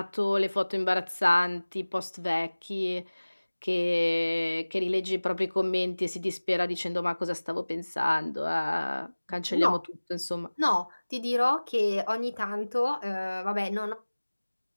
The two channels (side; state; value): both; inverted; correlation -1.00